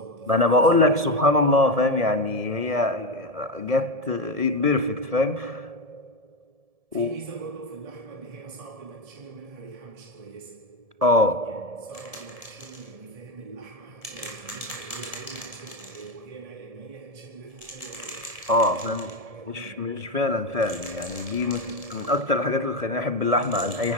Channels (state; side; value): late; left; 1.7 ms